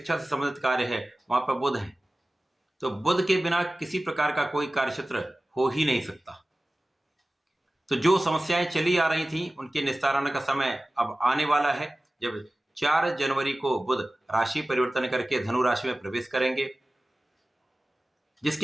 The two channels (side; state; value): both; normal; correlation 0.97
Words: से संबंधित कार्य है वहां पर बुध हैं। तो बुध के बिना किसी प्रकार का कोई कार्यक्षेत्र हो ही नहीं सकता। तो जो समस्याएं चली आ रही थी उनके निस्तारण का समय अब आने वाला है, जब 4 जनवरी को बुध राशि परिवर्तन करके धनु राशि में प्रवेश करेंगे,